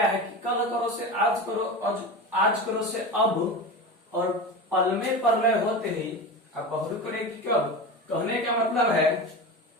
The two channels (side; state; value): both; normal; correlation 0.26